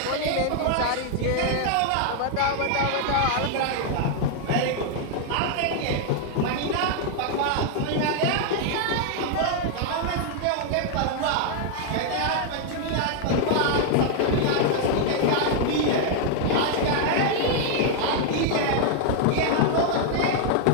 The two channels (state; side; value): different; both; correlation 0.00